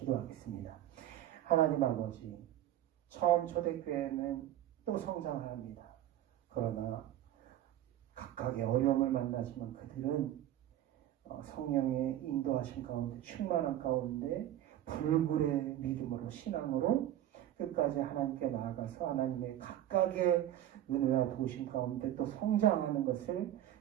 하나님 아버지, 처음 초대교회는 또 성장을 합니다. 그러나 각각의 어려움을 만나지만 그들은 성령의 인도하신 가운데 충만한 가운데 불굴의 믿음으로 신앙으로 끝까지 하나님께 나아가서 하나님의 각각의 은혜와 도우심 가운데 또 성장하는 것을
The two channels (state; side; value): quieter; left; 12.4 dB